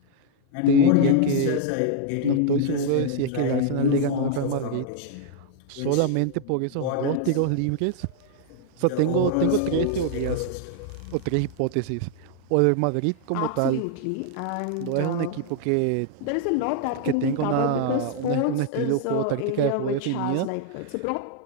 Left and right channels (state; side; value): different; both; correlation 0.00